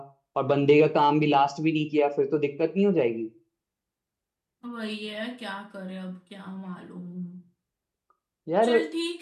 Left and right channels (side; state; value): both; identical; correlation 1.00